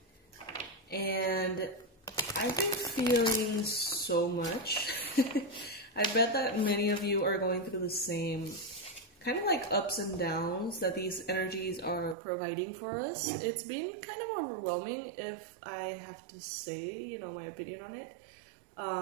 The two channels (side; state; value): left; drops out; at 12.2 s